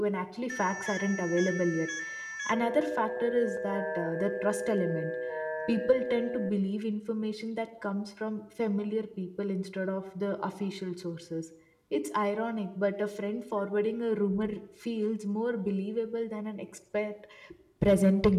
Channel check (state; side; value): identical; both; correlation 1.00